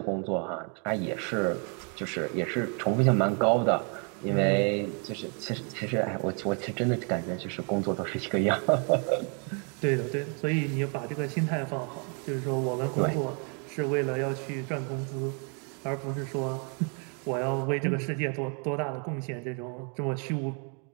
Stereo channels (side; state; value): left; quieter; 38.1 dB